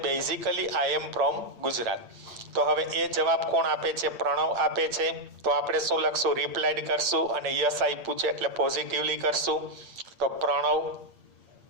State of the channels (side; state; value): left; late; 8.7 ms